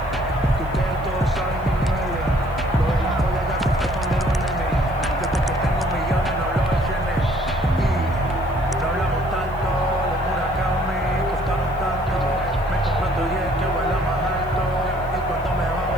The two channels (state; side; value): noise; left; hiss, 28 dB below the sound